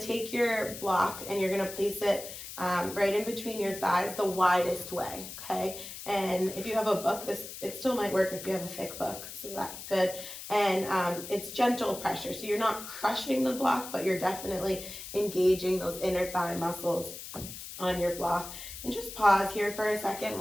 your block and you're gonna place it right in between your thighs the widest way, okay? And if you have a book, it still might work if you have a thick book, so that's good. And it's gentle pressure, so you're not crushing the block, but you're definitely engaging those inner thigh muscles on your block. And just pause here for a second.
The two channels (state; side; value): noise; left; hiss, 11 dB below the sound